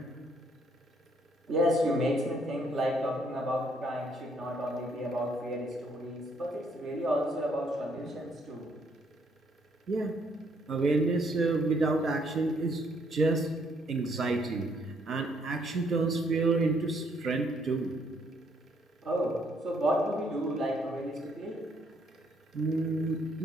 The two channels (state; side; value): normal; both; correlation 0.69